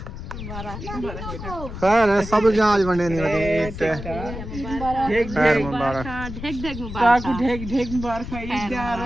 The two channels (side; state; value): left; noise; rumble, 9 dB below the sound